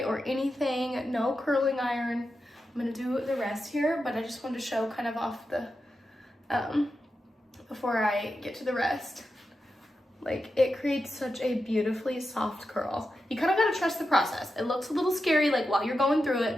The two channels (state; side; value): normal; both; correlation 0.89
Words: or anything, no curling iron. I'm gonna do the rest here, but I just wanted to show kind of off the before I get to the rest. Like, it creates such a beautifully soft curl. You kind of gotta trust the process. It looks a little scary like while you're going through